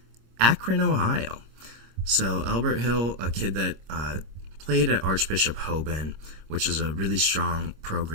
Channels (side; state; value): left; late; 26 ms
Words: Akron, Ohio. So Albert Hill, a kid that played at Archbishop Hoban, which is a really strong